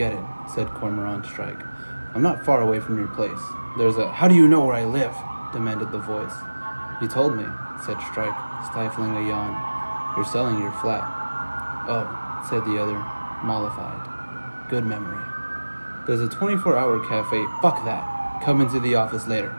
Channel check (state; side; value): inverted; both; correlation -1.00